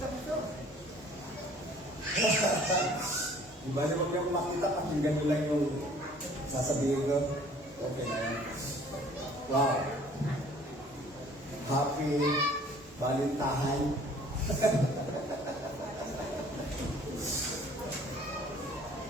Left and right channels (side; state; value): both; normal; correlation 0.53